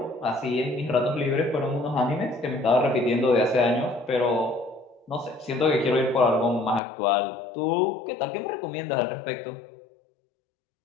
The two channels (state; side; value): drops out; right; at 6.8 s